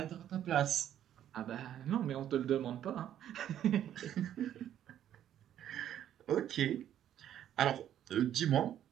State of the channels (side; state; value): left; quieter; 10.9 dB